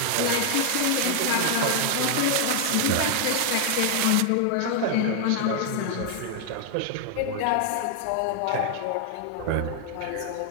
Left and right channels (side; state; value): both; different; correlation 0.00